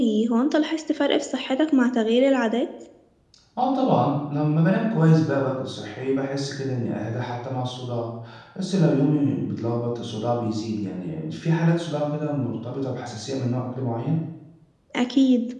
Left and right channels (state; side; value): identical; both; correlation 1.00